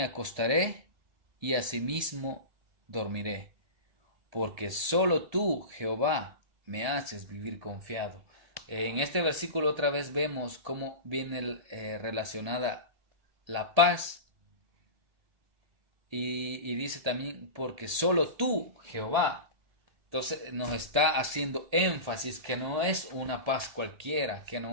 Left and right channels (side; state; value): left; late; 1.7 ms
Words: acostaré y asimismo dormiré, porque solo tú, Jehová, me haces vivir confiado. En este versículo otra vez vemos cómo viene relacionada la paz, y dice también: porque solo tú, Jehová. Entonces nos está haciendo énfasis que no es una paz cualquiera, que